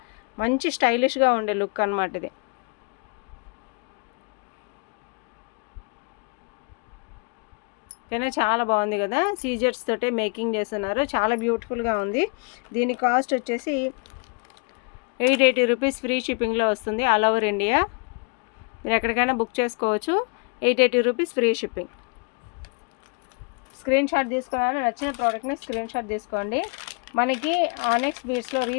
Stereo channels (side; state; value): right; quieter; 36.5 dB